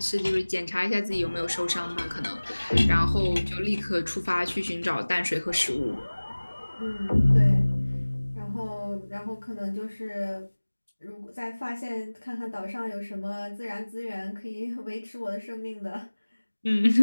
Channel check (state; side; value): inverted; both; correlation -1.00